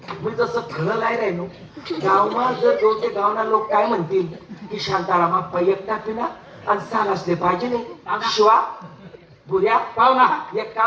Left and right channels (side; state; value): both; identical; correlation 1.00